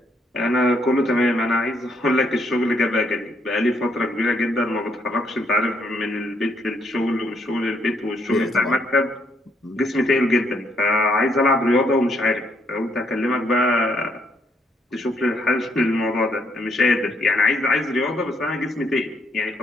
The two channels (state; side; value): normal; both; correlation 0.73